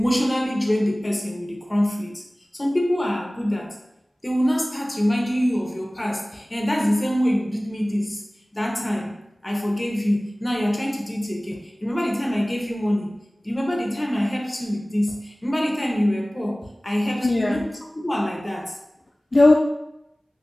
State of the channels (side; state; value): both; normal; correlation 0.98